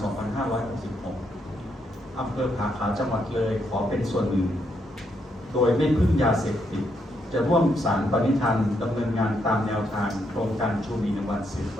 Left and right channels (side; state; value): both; normal; correlation 0.77